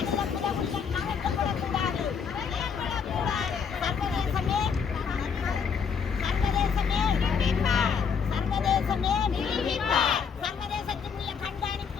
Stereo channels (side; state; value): right; quieter; 6.4 dB